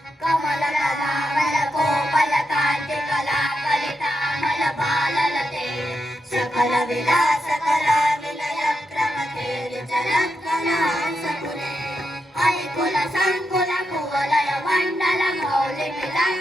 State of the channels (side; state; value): both; normal; correlation 0.85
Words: कमलकलामल कोमलकान्ति कलाकलितामल बाललते सकल विलास कला विलय क्रमते विचलत्कलांसकुले ऐकुल संकुल कुवलय मण्डल मौलि